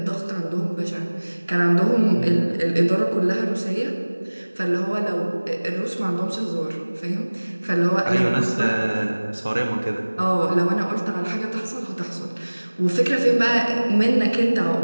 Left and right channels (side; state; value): both; inverted; correlation -1.00